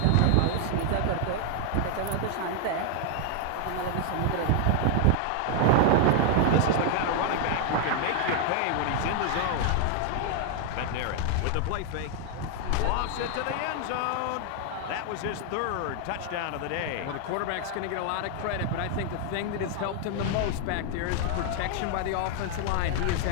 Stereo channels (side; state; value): both; different; correlation 0.00